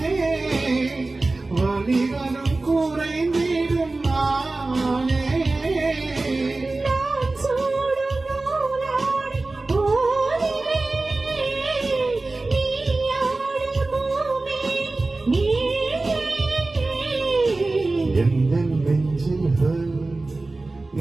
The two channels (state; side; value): quieter; left; 3.2 dB